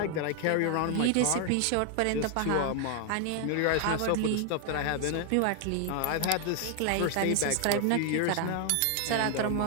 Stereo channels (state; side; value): different; both; correlation 0.00